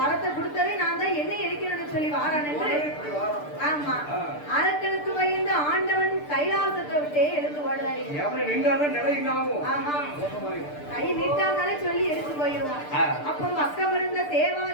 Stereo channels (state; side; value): late; right; 6.8 ms